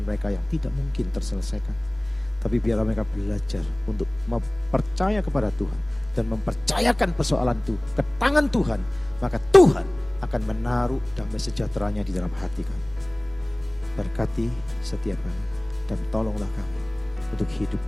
mereka yang tidak mungkin terselesaikan. Tapi biarlah mereka belajar untuk percaya kepada Tuhan dan mempercayakan persoalan itu ke tangan Tuhan. Maka Tuhan akan menaruh damai sejahteranya di dalam hati kami. Berkati setiap kami dan tolonglah kami untuk hidup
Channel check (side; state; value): right; noise; hum, 23 dB below the sound